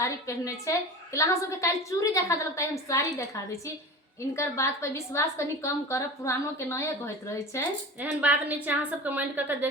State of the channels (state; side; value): normal; both; correlation 0.33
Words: पहनने छे कि अहाँ सब के काल चूड़ी देखा देलक त हम साड़ी देखा दे छी। इनकर बात पर विश्वास कनी कम करब, पुरानो के नए कहत रहे छे। एहन बात नहीं छे। अहाँ सब कमेंट करके